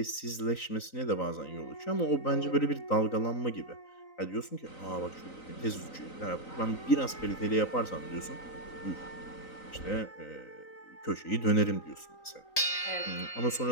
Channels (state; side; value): late; right; 3.9 ms